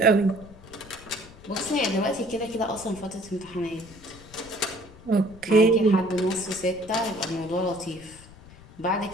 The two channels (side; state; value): left; noise; rumble, 20 dB below the sound